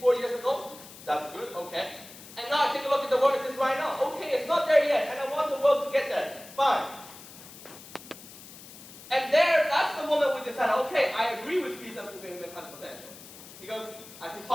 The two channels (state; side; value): noise; left; hiss, 17 dB below the sound